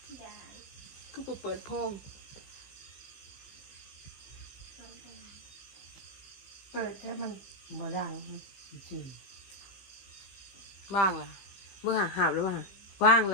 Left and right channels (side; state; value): right; late; 15 ms